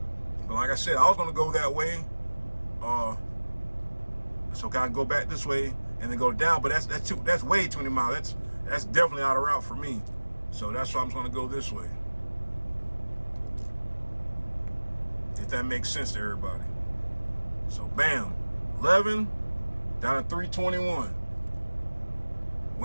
But like I said, I was gonna go that way. So I can go back this way and then go down, but that's way too many miles. That's definitely out of route for me. So that's why I'm gonna go this way. If that makes sense to everybody. So bam, 11 down to 321.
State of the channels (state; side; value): inverted; both; correlation -1.00